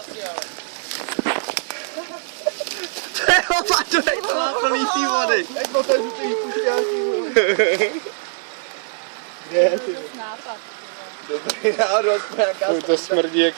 Plný tý vody. Jak to tady ty pušťáky. Kde je ty? Dobrý náhodou, aspoň nějaká Uj, to smrdí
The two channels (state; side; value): silent; left; digital silence